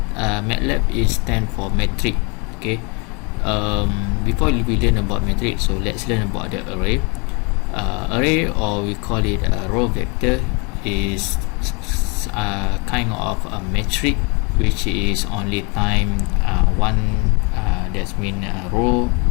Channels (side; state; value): right; quieter; 31.6 dB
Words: is stand for metric. Okay, before we learn about metric, so let's learn about the array. Array, or we call it a row vector, is kind of a metric which is only time one, that's mean row